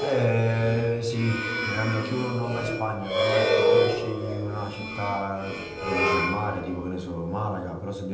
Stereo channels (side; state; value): both; identical; correlation 1.00